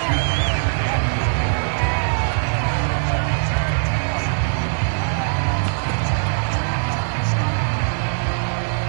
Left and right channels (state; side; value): silent; left; digital silence